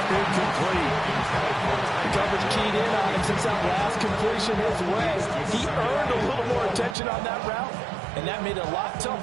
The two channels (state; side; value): drops out; left; at 7.0 s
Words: incomplete. The coverage keyed in on him since that last completion his way. He earned a little more attention on that route, and that made it a lot